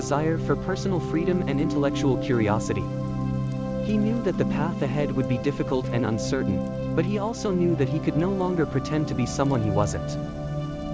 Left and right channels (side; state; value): both; identical; correlation 1.00